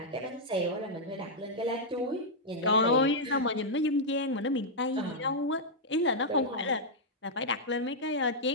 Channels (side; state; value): both; normal; correlation -0.06